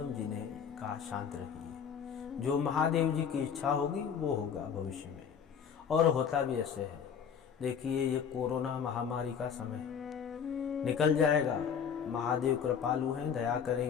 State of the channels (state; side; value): quieter; right; 7.4 dB